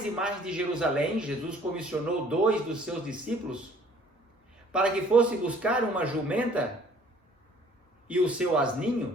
e mais de Jerusalém, Jesus comissionou 2 dos seus discípulos para que fosse buscar uma jumenta e o seu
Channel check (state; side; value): normal; both; correlation 0.56